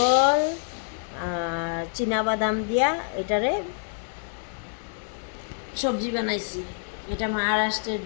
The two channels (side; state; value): right; silent; 60 dB below the other